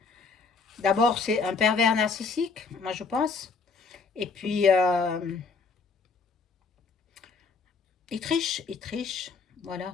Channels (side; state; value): right; quieter; 4.6 dB